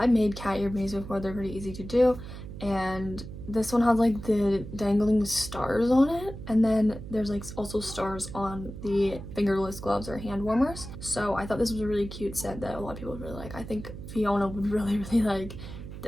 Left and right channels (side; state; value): right; noise; hum, 11 dB below the sound